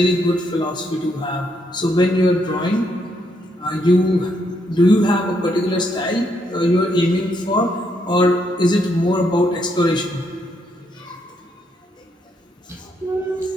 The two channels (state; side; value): normal; both; correlation 0.75